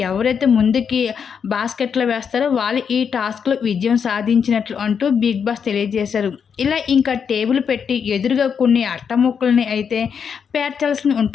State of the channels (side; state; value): right; quieter; 6.9 dB